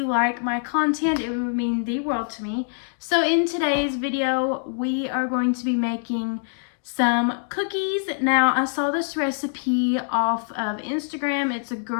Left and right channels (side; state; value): right; silent; digital silence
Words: like my content. It would mean the world to me. So in today's video we are going to be making some cookies. Now, I saw this recipe off of Instagram. It's a